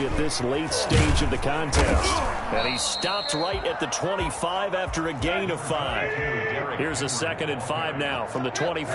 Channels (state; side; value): identical; both; correlation 1.00